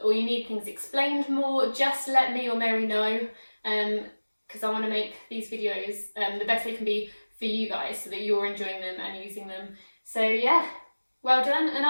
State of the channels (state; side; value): inverted; both; correlation -1.00